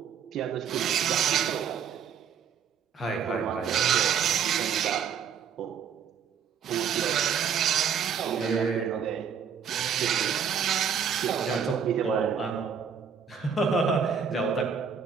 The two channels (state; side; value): quieter; left; 7.3 dB